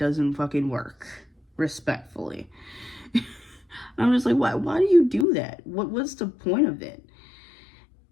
fucking work, respectfully. I'm just like, why do you do that? What's the point of it?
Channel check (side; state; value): right; drops out; at 5.2 s